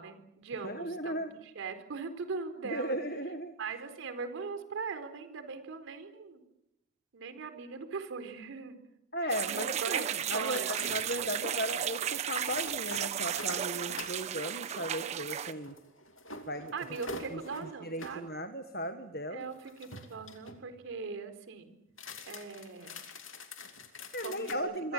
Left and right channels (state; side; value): quieter; left; 3.6 dB